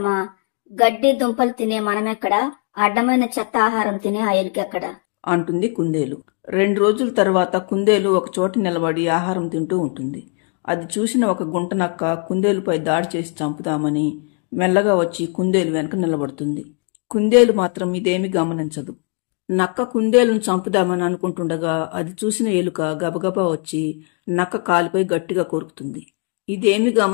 గడ్డి దుంపలు తినే మనమెక్కడా, అడ్డమైన చెత్త ఆహారం తినే ఆ ఎలుకెక్కడా అంటుంది కుందేలు. 2 రోజుల తర్వాత కుందేలు ఒక చోట నిలబడి ఆహారం తింటూ ఉంటుంది. అది చూసిన ఒక గుంటనక్క కుందేలుపై దాడి చేసి చంపుతామని మెల్లగా వచ్చి కుందేలు వెనక నిలబడుతుంది. కుందేలు మాత్రం ఇదేమీ గమనించదు. నక్క కుందేలును చంపుదామని అనుకుంటుండగా అది చూసిన ఎలుక గబగబా వచ్చి నక్క కాలుపై గట్టిగా కొరుకుతుంది. ఇదేమీ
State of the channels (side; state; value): right; quieter; 38.6 dB